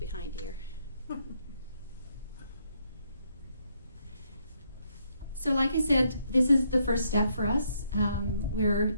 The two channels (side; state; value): both; inverted; correlation -0.74